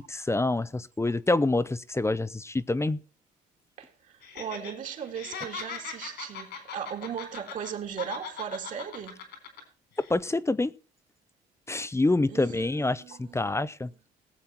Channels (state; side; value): normal; both; correlation 0.78